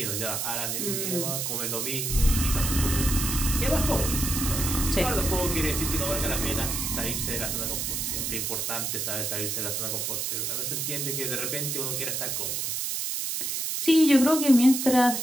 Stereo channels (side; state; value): right; noise; hiss, 1 dB below the sound